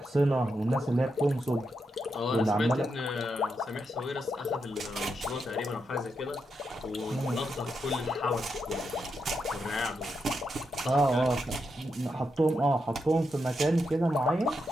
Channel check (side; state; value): both; normal; correlation 0.84